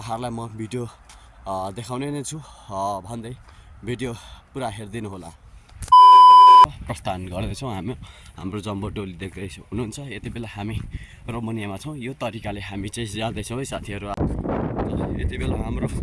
म भिडियो देखाउने नै छु भन्दै भिडियो पुरा हेरिदिनु होला। प्रस्थान गर्दैछौँ हाम्रो जम्बो टोली देख्दै हुनुहुन्छ। यति बेला हामी रोमानियामा छौँ। यो तरिकाले हामी चाहिँ जाँदैछौँ है साथीहरू। यति बेला हाम्रो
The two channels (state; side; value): identical; both; correlation 1.00